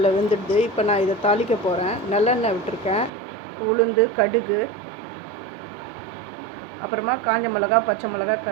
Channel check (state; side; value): drops out; left; at 3.1 s